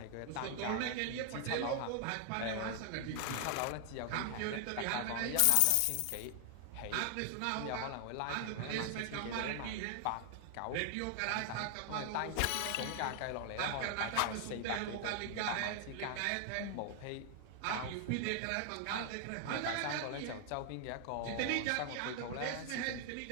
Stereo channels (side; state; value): both; different; correlation 0.00